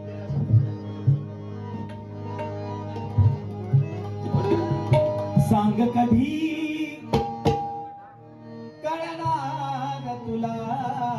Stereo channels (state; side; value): identical; both; correlation 1.00